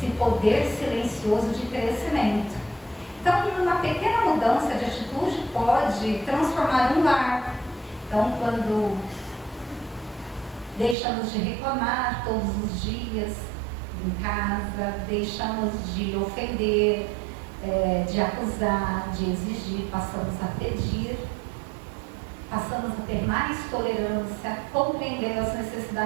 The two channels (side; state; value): left; drops out; at 11.0 s